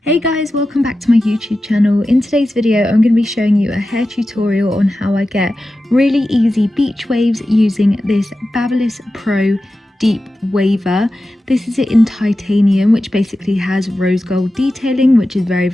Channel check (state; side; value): normal; both; correlation 0.93